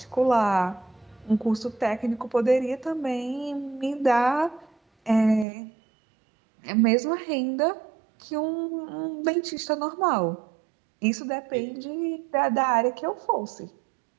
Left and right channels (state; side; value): drops out; left; at 5.5 s